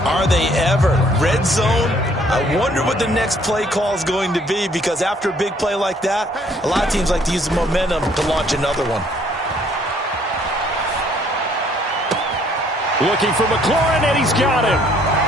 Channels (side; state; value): both; normal; correlation 0.63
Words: Are they ever? Red zone? I wonder what the next play call is going to be, because after a big play like that, a lot of teams like to use the momentum to launch another one. Looking for McLaurin, and he's got him.